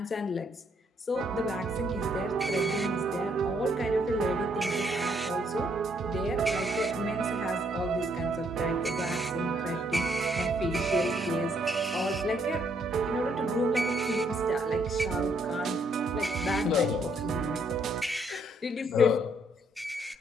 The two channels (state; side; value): normal; both; correlation 0.70